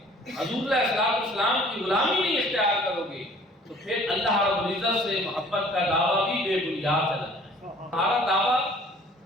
حضور علیہ السلام کی غلامی نہیں اختیار کرو گے، تو پھر اللہ رب العزت سے محبت کا دعویٰ بھی بے بنیاد ہے۔ ہمارا دعویٰ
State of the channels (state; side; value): normal; both; correlation 0.53